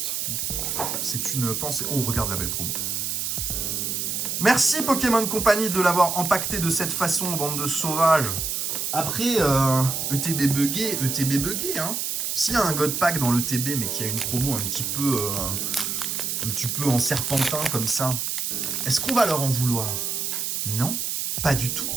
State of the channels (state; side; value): noise; right; hiss, 1 dB below the sound